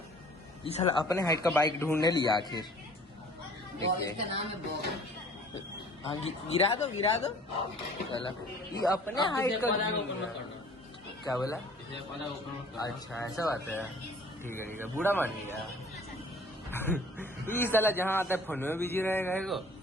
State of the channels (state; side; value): normal; both; correlation 0.51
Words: ये साला अपने हाइट का बाइक ढूंढने लिया आखिर। देखिए इसका नाम है बॉब। हाँ गिरा दो चला ये अपने हाइट का क्या बोला? अच्छा ऐसा बात है। ठीक है बूढ़ा मान लिया। ये साला जहाँ आता है फोन में बिजी रहेगा एगो,